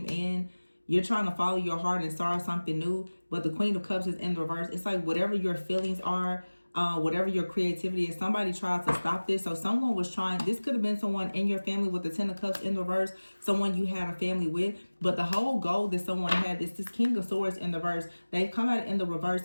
in. You're trying to follow your heart and start something new, but the Queen of Cups is in the reverse. It's like whatever your feelings are, whatever your creativity is, somebody tried to stop this. So someone was trying, this could have been someone in your family with the Ten of Cups in the reverse, someone you had a family with, but the whole goal that someone had is this King of Swords in the reverse. They've come out in the reverse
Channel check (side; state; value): both; inverted; correlation -1.00